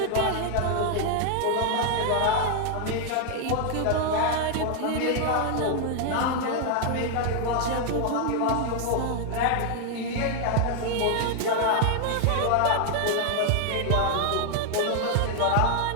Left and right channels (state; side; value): different; both; correlation 0.00